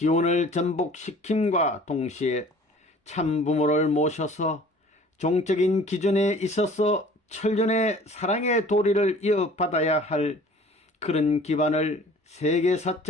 전복시킴과 동시에 참부모를 모셔서 종적인 기준에 있어서 천륜의 사랑의 도리를 이어받아야 할 그런 기반을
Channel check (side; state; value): both; normal; correlation 0.48